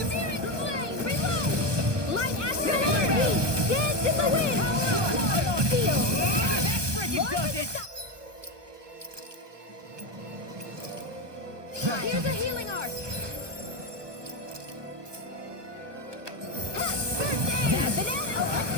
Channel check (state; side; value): late; left; 1.2 ms